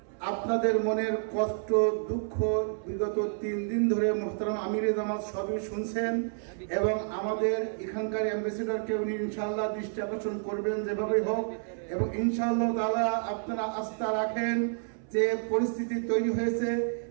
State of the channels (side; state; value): left; silent; 58 dB below the other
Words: আপনাদের মনের কষ্ট দুঃখ বিগত 3 দিন ধরে মুহতারাম আমিরে জামাত সবই শুনছেন এবং আমাদের এখানকার অ্যাম্বাসেডরকে উনি ইনশাআল্লাহ দৃষ্টি আকর্ষণ করবেন যেভাবেই হোক, এবং ইনশাআল্লাহ তাআলা আপনারা আস্থা রাখেন যে পরিস্থিতি তৈরি হয়েছে